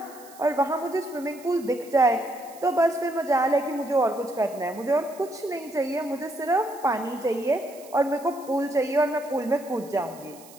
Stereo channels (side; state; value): right; noise; hiss, 21 dB below the sound